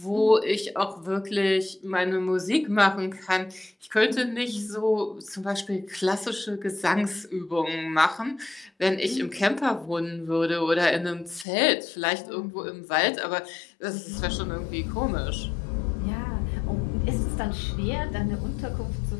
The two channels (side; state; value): right; drops out; at 11.5 s